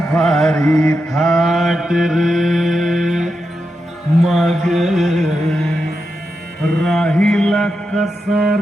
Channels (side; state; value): both; normal; correlation 0.87